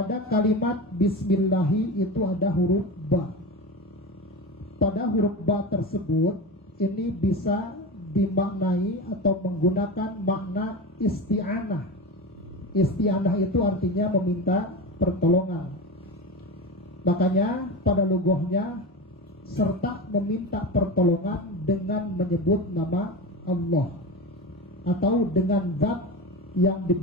kalimat Bismillahi itu ada huruf ba. Pada huruf ba tersebut ini bisa dimaknai atau menggunakan makna isti'anah. Isti'anah itu artinya meminta pertolongan. Makanya pada lughahnya serta meminta pertolongan dengan menyebut nama Allah atau dengan zat yang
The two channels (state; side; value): normal; both; correlation 0.25